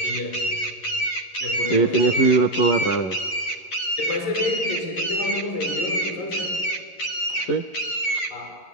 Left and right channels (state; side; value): late; right; 11 ms